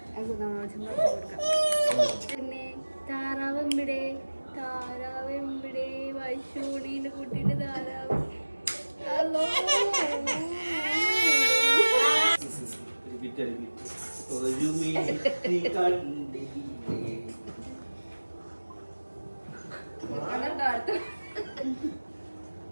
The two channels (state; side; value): inverted; both; correlation -1.00